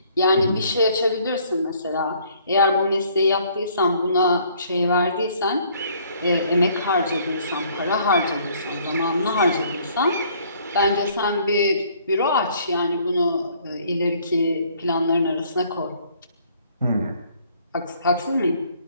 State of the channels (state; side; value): inverted; both; correlation -0.61